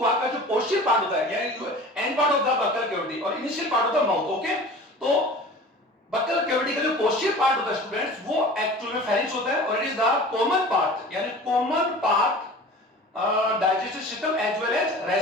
का जो पोस्टीरियर पार्ट होता है, यानी end part of the buccal cavity और initial part of the mouth. Okay, तो बक्कल कैविटी का जो पोस्टीरियर पार्ट होता है स्टूडेंट्स, वो एक्चुअल में फेरिंक्स होता है और it is the common part, यानी common part digestive system as well as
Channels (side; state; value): both; normal; correlation 0.40